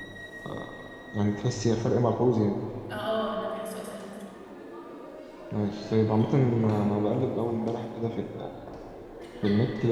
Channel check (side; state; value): both; identical; correlation 1.00